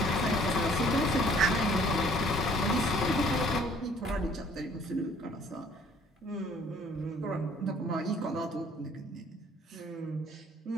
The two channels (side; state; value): both; normal; correlation 0.58